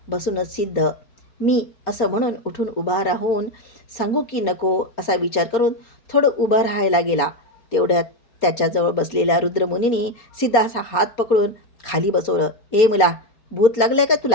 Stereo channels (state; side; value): late; right; 4.3 ms